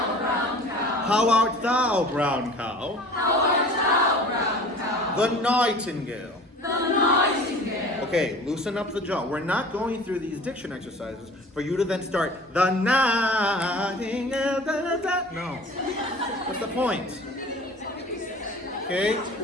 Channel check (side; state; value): both; normal; correlation 0.43